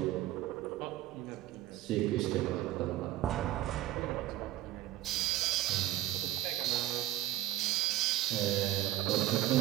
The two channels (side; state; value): left; quieter; 14.6 dB